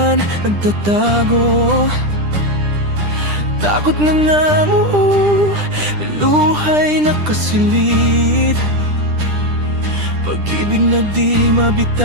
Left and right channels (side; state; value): left; late; 10 ms